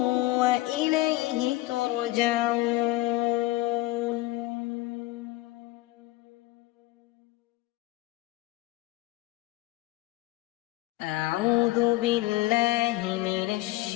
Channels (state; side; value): quieter; right; 18.6 dB